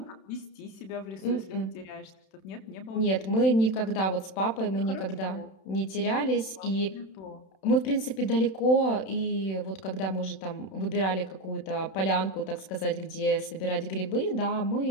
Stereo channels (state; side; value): late; right; 31 ms